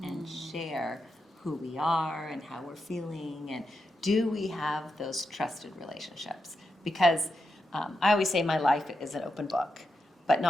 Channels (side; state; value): both; normal; correlation 0.86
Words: and share who we are and how we're feeling, and do we have those trusted relationships? Because I always say my life is an open book, but